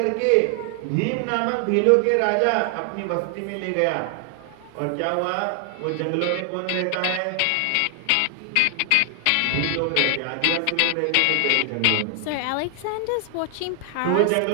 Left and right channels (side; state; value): both; different; correlation 0.00